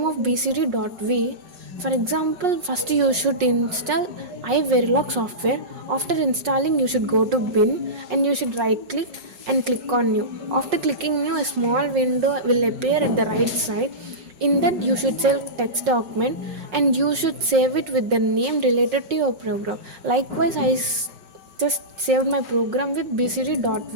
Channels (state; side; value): late; left; 5.5 ms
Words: of bcd.v. For example, first you should install iVerilog software. After installing, you should go to bin and you should right click and click on new. After clicking new, a small window will appear at the right side. In that, you should select text document and you should save it with the name related to your program. Likewise, just saved my program with